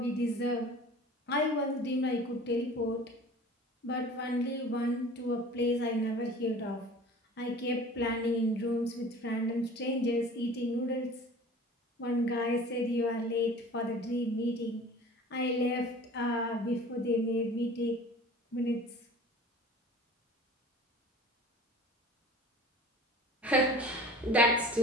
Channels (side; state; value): both; normal; correlation 0.43